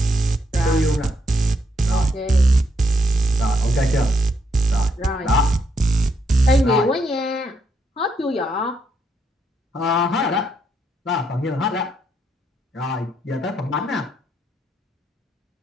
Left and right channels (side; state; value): both; normal; correlation 0.76